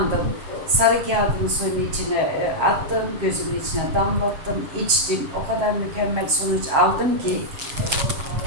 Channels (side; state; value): left; late; 7.4 ms